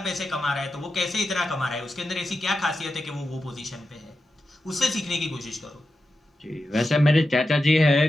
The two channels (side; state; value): both; normal; correlation 0.90